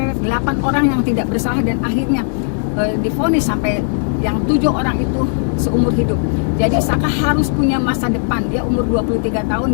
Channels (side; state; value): right; silent; digital silence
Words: 8 orang yang tidak bersalah dan akhirnya divonis sampai yang 7 orang itu seumur hidup. Jadi Saka harus punya masa depan. Dia umur 23